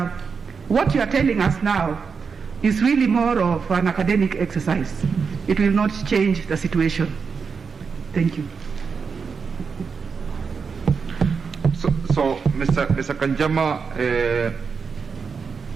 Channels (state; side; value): quieter; left; 5.6 dB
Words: what you are telling us now is really more of an academic exercise. It will not change the situation. Thank you. So Mr. Kanjama,